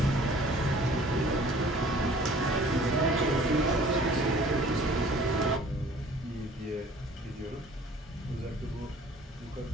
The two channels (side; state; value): both; normal; correlation 0.52